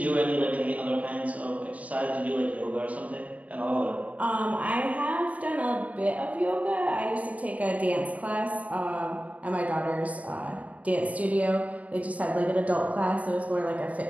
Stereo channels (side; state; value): left; late; 0.070 ms